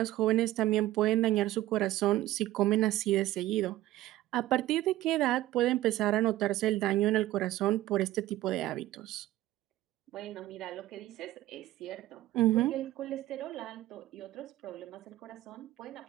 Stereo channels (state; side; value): quieter; left; 15.6 dB